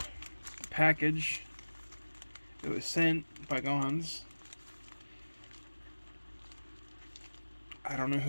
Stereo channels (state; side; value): inverted; both; correlation -1.00